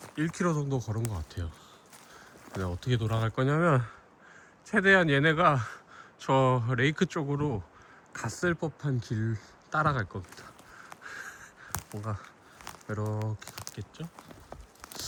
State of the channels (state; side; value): identical; both; correlation 1.00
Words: 1km 정도 걸은 것 같아요. 근데 어떻게 돌아갈 거냐면, 최대한 얘네가 저 레이크 쪽으로 갔을 법한 길 따라갈 겁니다. 뭔가 이렇게 갔겠죠?